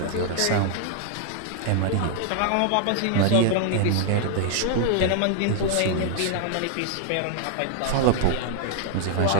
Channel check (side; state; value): both; different; correlation 0.00